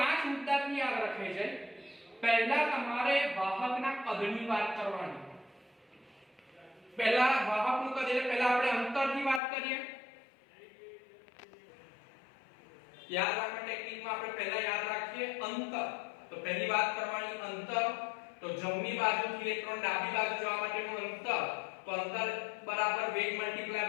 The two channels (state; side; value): drops out; right; at 9.4 s